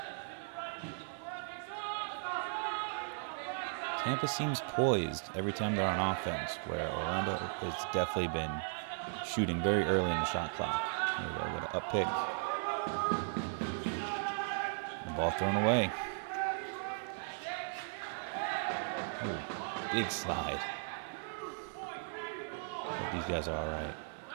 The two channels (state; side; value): silent; left; digital silence